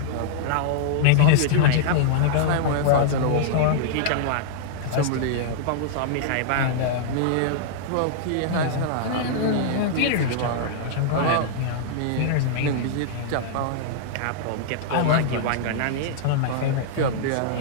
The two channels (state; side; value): different; both; correlation -0.01